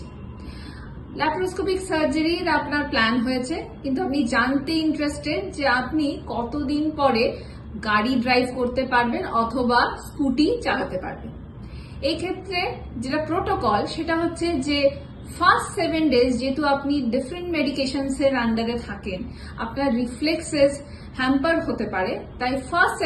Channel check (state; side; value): identical; both; correlation 1.00